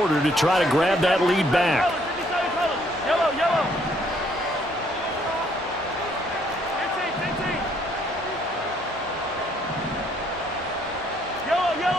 to try to grab that lead back. Yellow, yellow. Yellow,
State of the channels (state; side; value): normal; both; correlation 0.66